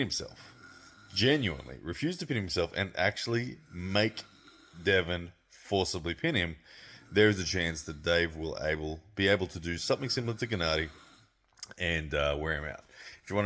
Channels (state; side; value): identical; both; correlation 1.00